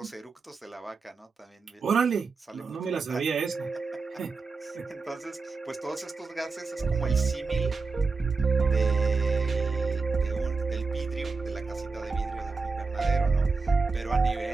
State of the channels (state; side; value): quieter; left; 4.4 dB